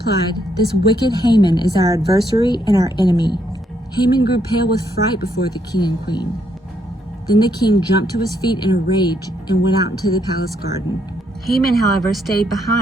"This wicked Haman is our adversary and our enemy." Haman grew pale with fright before the king and queen. Then the king jumped to his feet in a rage and went out into the palace garden. Haman, however, stayed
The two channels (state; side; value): normal; both; correlation 0.74